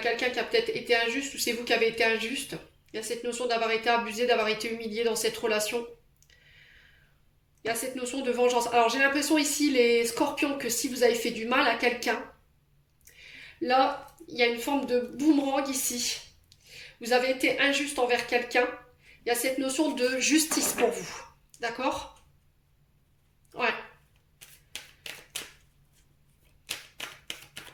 qui a peut-être été injuste ou c'est vous qui avez été injuste. Il y a cette notion d'avoir été abusé, d'avoir été humilié dans cette relation. Il y a cette notion de vengeance. Alors j'ai l'impression ici, les scorpions, que si vous avez fait du mal à quelqu'un, là, il y a une forme de boomerang ici. Vous avez été injuste envers quelqu'un. Il y a cette notion de justice pour vous. D'accord? Ouais.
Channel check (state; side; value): identical; both; correlation 1.00